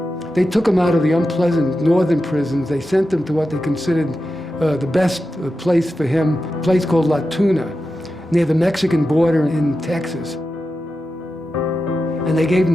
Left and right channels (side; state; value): both; normal; correlation 0.91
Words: They took him out of the unpleasant northern prisons. They sent him to what they considered the best place for him, a place called La Tuna, near the Mexican border in Texas. And they gave